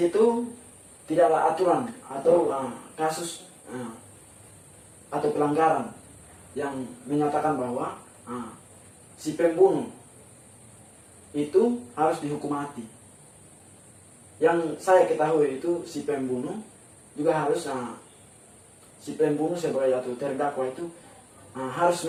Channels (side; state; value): both; identical; correlation 1.00